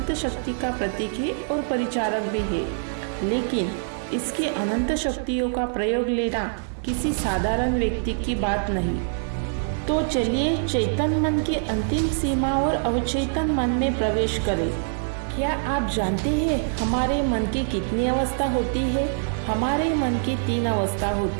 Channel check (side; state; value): left; silent; digital silence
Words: शक्ति का प्रतीक है और परिचारक भी है, लेकिन इसकी अनंत शक्तियों का प्रयोग लेना किसी साधारण व्यक्ति की बात नहीं। तो चलिए चेतन मन की अंतिम सीमा और अवचेतन मन में प्रवेश करें। क्या आप जानते हैं हमारे मन की कितनी अवस्था होती है? हमारे मन की 3 अवस्था